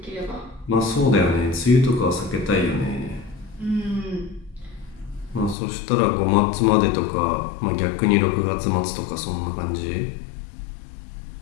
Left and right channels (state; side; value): drops out; right; at 5.6 s